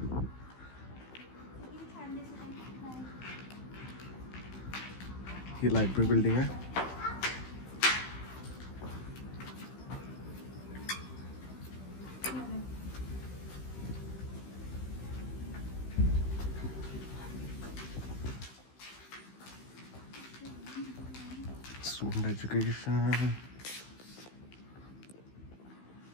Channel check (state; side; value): late; right; 16 ms